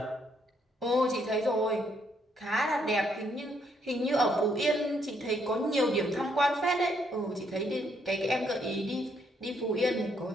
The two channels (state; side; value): normal; both; correlation 0.72